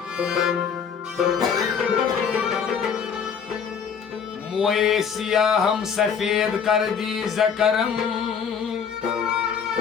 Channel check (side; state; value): right; quieter; 6.9 dB